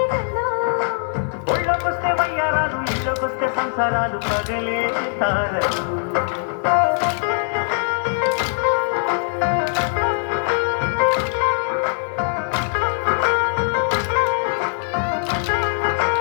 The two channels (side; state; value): right; silent; digital silence